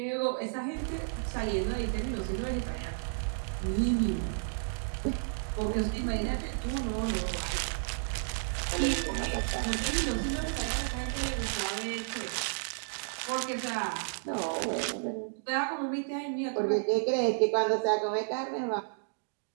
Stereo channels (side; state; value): left; silent; digital silence